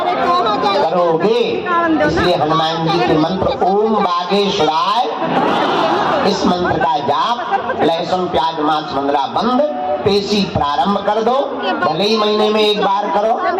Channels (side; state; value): both; identical; correlation 1.00